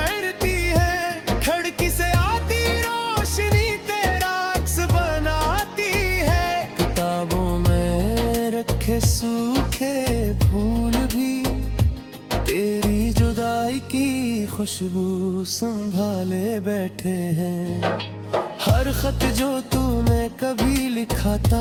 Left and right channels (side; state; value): both; identical; correlation 1.00